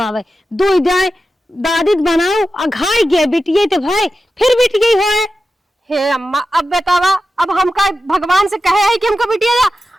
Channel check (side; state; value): both; normal; correlation 0.92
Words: दो जाए दादी बनाओ अघाई गए बिटिये तो भाई फिर बिटिये हो। हे अम्मा अब बतावा, अब हमका भगवान से कहे है कि हमको बिटिया